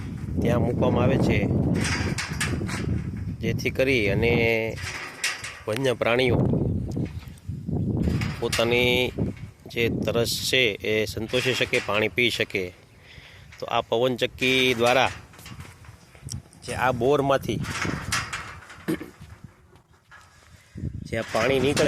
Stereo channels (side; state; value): both; identical; correlation 1.00